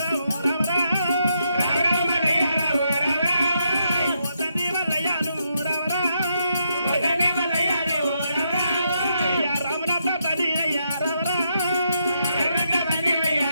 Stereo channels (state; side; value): inverted; both; correlation -0.80